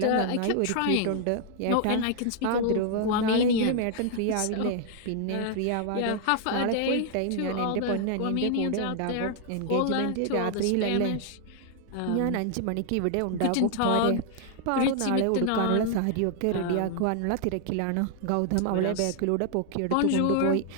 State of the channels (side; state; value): both; different; correlation 0.00